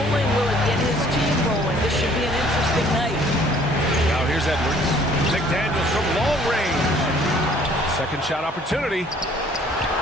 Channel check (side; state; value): both; normal; correlation 0.57